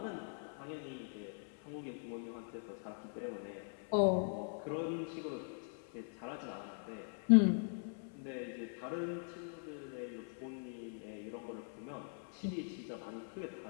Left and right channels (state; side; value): silent; right; 50 dB below the other